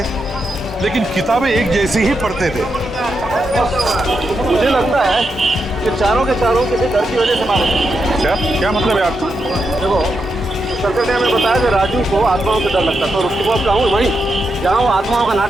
लेकिन किताबें एक जैसी ही पढ़ते थे। मुझे लगता है कि चारों के चारों किसी डर की वजह से मारे। क्या मतलब है आपको? देखो, सर्कल ने हमें बताया कि राजू को आत्माओं से डर लगता था, और उसके बाद कहूँ वहीं जहाँ वो आत्माओं का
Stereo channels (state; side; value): normal; both; correlation 0.85